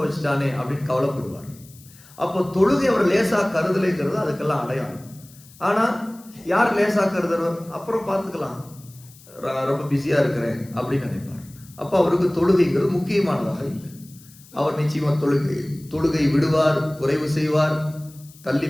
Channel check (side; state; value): left; noise; hiss, 23 dB below the sound